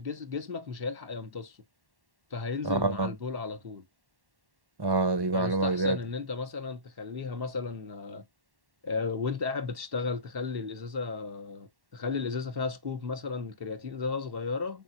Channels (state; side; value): late; left; 1.1 ms